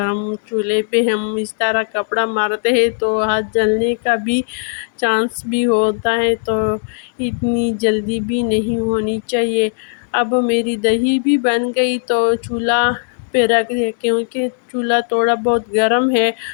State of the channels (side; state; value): right; silent; digital silence